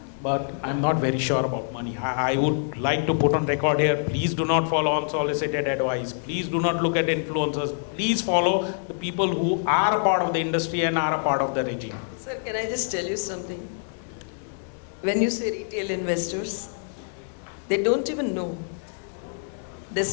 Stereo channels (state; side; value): silent; right; digital silence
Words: but I'm not very sure about money. I would like to put on record here, please do not follow unsolicited advice. Please do not look at influencers. Please follow the people who are a part of the industry and are a part of the regime. Sir, can I just tell you something? When you say retail investors, they don't even know,